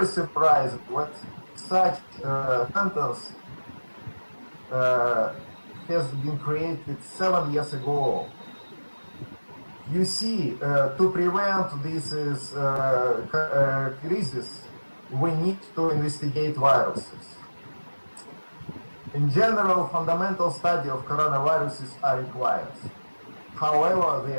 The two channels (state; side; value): inverted; both; correlation -1.00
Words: surprising what such sentence has been created 7 years ago. You see, to prevent this crisis, we need to investigate viruses. In general, fundamental study of coronaviruses are required. However, they